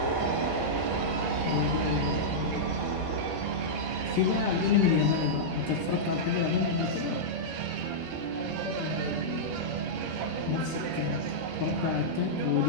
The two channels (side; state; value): both; normal; correlation -0.09